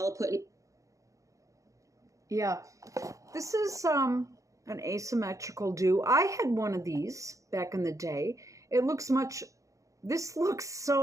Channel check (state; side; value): late; left; 0.16 ms